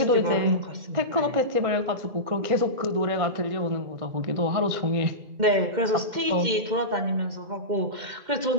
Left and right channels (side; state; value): left; late; 2.1 ms